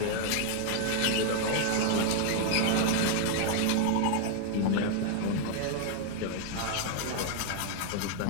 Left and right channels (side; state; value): both; different; correlation 0.00